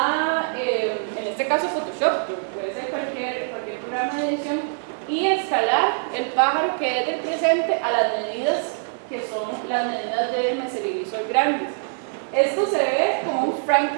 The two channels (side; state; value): left; silent; digital silence